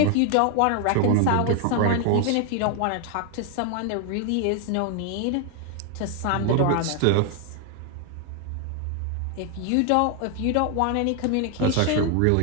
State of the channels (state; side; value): different; both; correlation 0.01